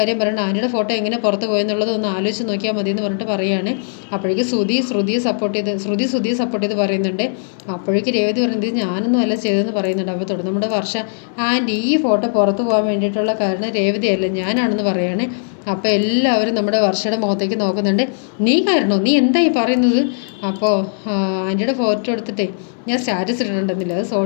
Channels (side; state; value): right; silent; digital silence